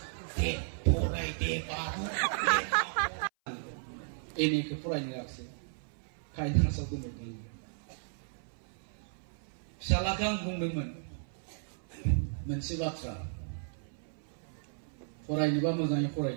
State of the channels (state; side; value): silent; left; 55 dB below the other